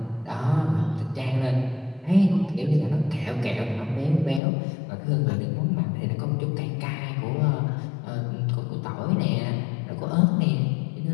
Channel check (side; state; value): right; drops out; at 4.4 s